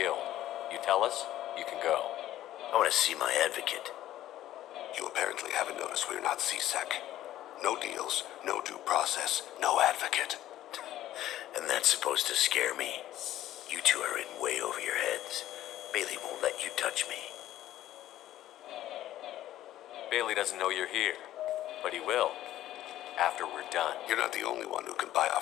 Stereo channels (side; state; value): right; quieter; 13.6 dB